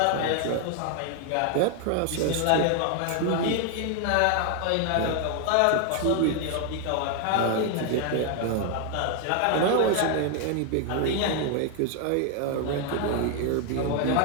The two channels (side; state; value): both; different; correlation 0.00